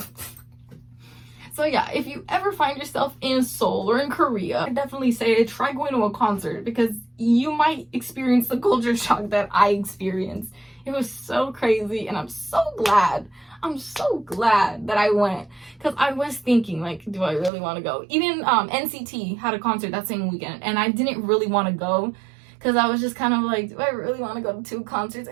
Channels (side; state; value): left; drops out; at 17.5 s